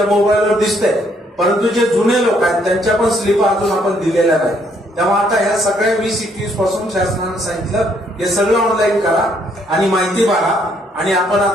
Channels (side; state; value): both; normal; correlation 0.69